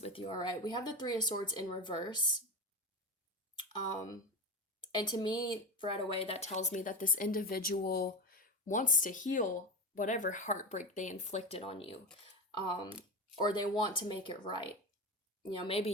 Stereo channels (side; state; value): both; normal; correlation 0.19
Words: with you, all right? We have the Three of Swords in reverse. And to me, right away, that tells me that this individual wants to heal whatever heartbreak they inflicted on you. Or they want to make it right. Maybe